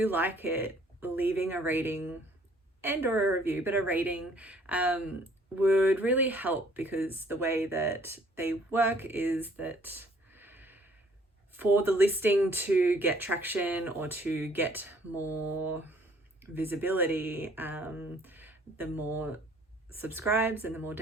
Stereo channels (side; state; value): both; normal; correlation 0.60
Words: like it, leaving a rating and or a review, but a rating would really help, because the way that they work is that for the listing to get traction or to get more visibility, the more subscribes and the more